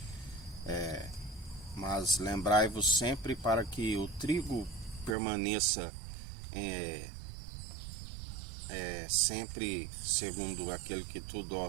Mas lembrai-vos sempre, para que o trigo permaneça sempre segundo aquele que tudo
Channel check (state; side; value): drops out; left; at 5.2 s